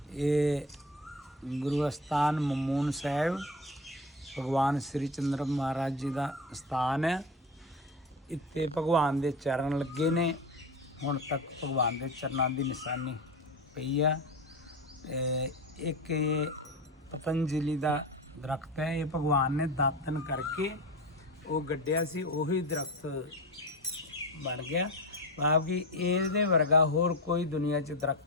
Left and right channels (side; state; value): both; normal; correlation 0.25